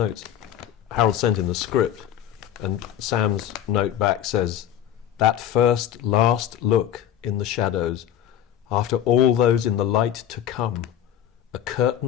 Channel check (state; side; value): quieter; right; 10.6 dB